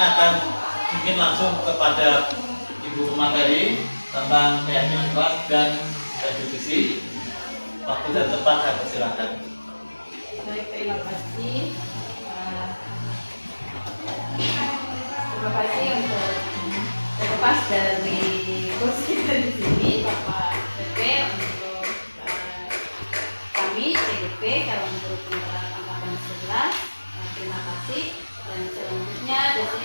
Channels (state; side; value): inverted; both; correlation -1.00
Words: akan mungkin langsung kepada Ibu materi tentang keyakinan kelas dan restitusi. Waktu dan tempat saya persilakan. Baik, terima kasih. Terima kasih untuk terlepas dari kursi kita di sini, Bapak PP, untuk kami CDP calon guru penggerak angkatan 11. Terima kasih. Dan selanjutnya di